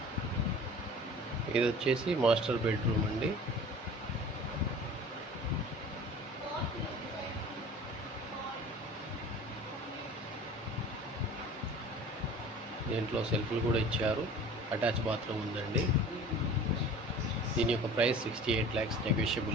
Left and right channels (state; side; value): normal; both; correlation 0.42